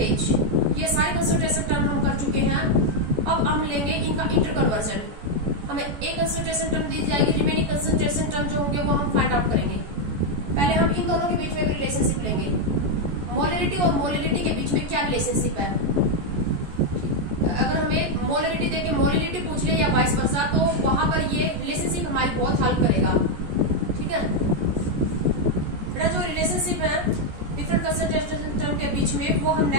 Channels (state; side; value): late; left; 14 ms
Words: ये सारे कंसंट्रेशन टर्म हम कर चुके हैं। अब हम लेंगे इनका इंटर कन्वर्जन। हमें एक कंसंट्रेशन टर्म दी जाएगी, रिमेनिंग कंसंट्रेशन टर्म जो होंगे वो हम फाइंड आउट करेंगे। पहले हम इन दोनों के बीच में भी रिलेशनशिप लेंगे। मोलिडिटी और मोलिडिटी के बीच में क्या रिलेशनशिप है? अगर हमें मोलिडिटी देके मोलिडिटी पूछ ले या वाइस वर्सा, तो वहां पर ये रिलेशनशिप हमारी बहुत हेल्प करेगा। ठीक है, जो रिलेशनशिप है डिफरेंट कंसंट्रेशन टर्म के बीच में, वो हम